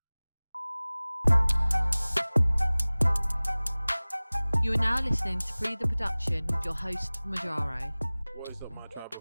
You are now listening to Pree Da Production with your host, Majaro. What is up, my tribal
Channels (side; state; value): both; inverted; correlation -1.00